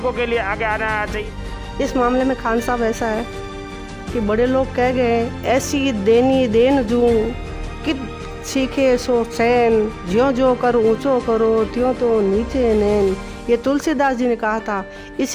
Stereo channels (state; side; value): identical; both; correlation 1.00